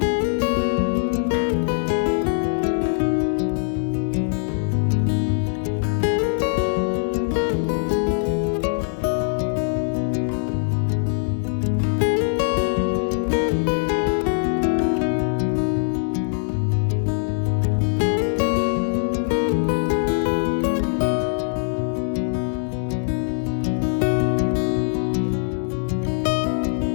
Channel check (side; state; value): right; silent; digital silence